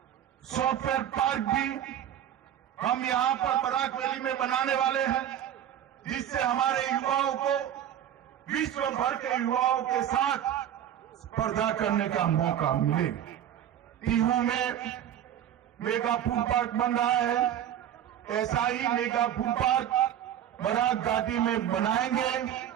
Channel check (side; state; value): left; quieter; 10.5 dB